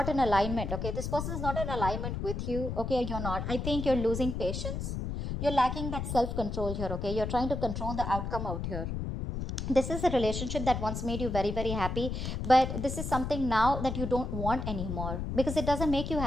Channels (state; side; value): noise; left; rumble, 4 dB below the sound